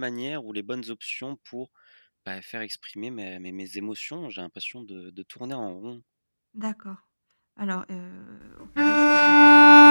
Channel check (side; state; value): both; inverted; correlation -1.00